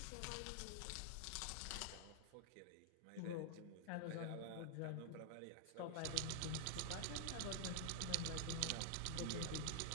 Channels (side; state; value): both; different; correlation 0.00